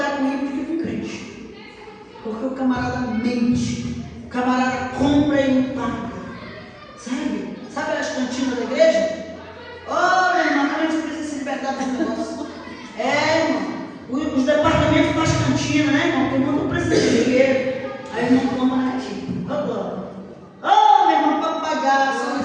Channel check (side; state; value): both; identical; correlation 1.00